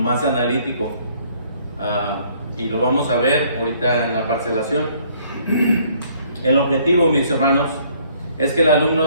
analítico, y lo vamos a ver ahorita en la parcelación. El objetivo, mis hermanos, es que el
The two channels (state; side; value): inverted; both; correlation -0.62